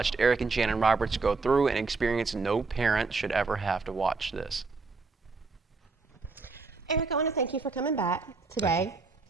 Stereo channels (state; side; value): quieter; left; 4.1 dB